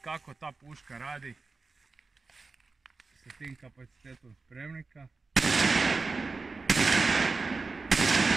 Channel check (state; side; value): quieter; left; 4.1 dB